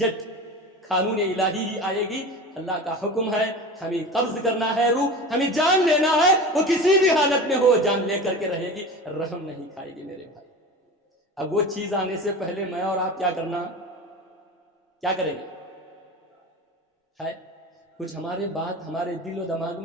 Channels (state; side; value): normal; both; correlation 0.31